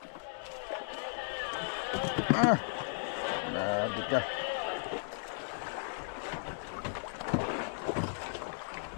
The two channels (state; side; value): silent; right; digital silence